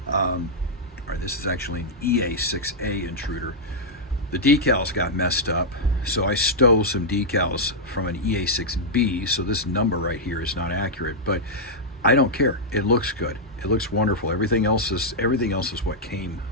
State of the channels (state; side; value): normal; both; correlation -0.06